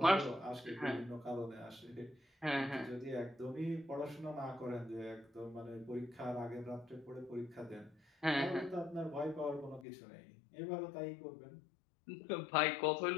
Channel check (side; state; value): right; drops out; at 9.9 s